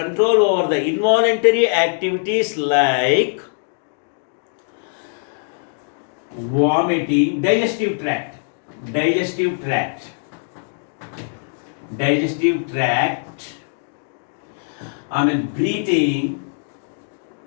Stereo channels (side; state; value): right; silent; digital silence